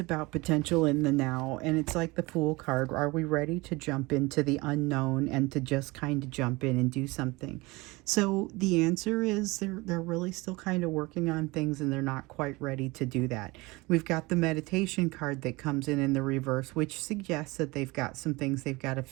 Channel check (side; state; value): left; quieter; 23.2 dB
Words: potential in the now, and it's like the Fool card. Are we ready to jump into the unknown and to just kind of jump in and do something? So the answer is they're really still kind of working on things, and they're not quite ready to do that. We've got the meditation card that comes in the reverse, which suggests that they've got some things they've got to